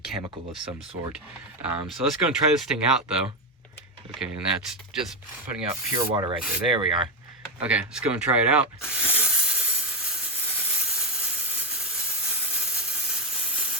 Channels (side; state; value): both; normal; correlation 0.06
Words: of some sort. So let's go and try this thing out though. Okay, and that's just putting out pure water right there. There we are. Okay, let's go and try it out.